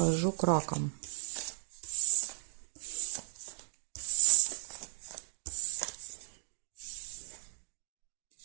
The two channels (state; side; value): silent; left; digital silence